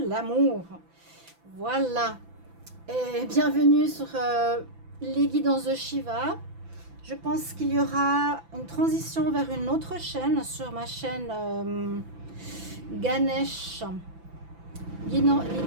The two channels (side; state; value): left; late; 5.9 ms